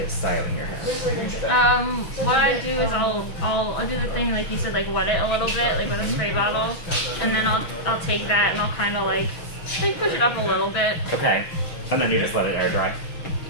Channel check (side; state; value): right; late; 6.2 ms